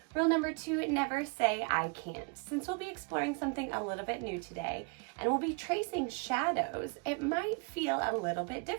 Rule number 2, never say I can't. Since we'll be exploring something a little bit new today and we'll be tracing shadows, it might feel a little bit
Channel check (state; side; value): quieter; left; 34.3 dB